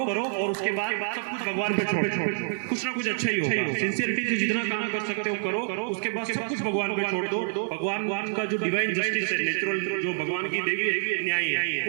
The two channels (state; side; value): silent; left; digital silence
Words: उसके बाद सब कुछ भगवान पे छोड़ दो, कुछ ना कुछ अच्छा ही होगा। सिंसियरिटी से जितना काम कर सकते हो करो, उसके बाद सब कुछ भगवान पे छोड़ दो। भगवान का जो डिवाइन जस्टिस है, नेचुरल जो भगवान की देवी है, न्याय है,